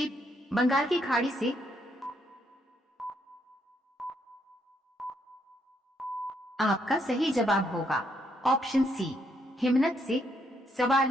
बंगाल की खाड़ी से। आपका सही जवाब होगा ऑप्शन सी हिमनद से। सवाल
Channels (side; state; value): both; normal; correlation 0.74